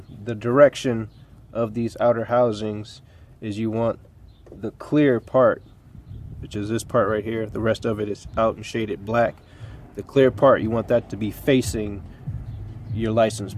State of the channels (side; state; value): both; identical; correlation 1.00